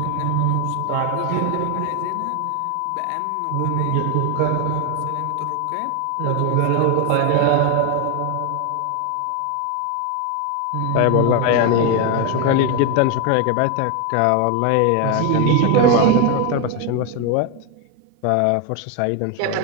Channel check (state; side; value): different; both; correlation 0.01